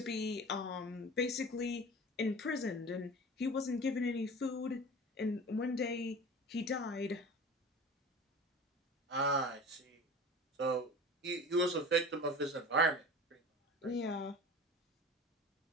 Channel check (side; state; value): both; normal; correlation 0.37